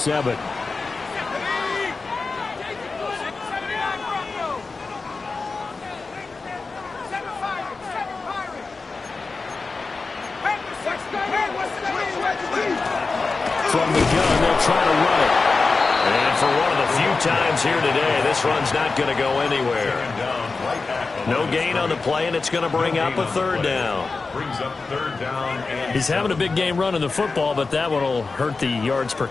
From the gun, they'll try to run it. And for one of the few times here today, this run's not going to go anywhere. No gain on the play, and it's going to bring up a third down. He's having a big game running the football, but that one will hurt the yards per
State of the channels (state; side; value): quieter; right; 4.1 dB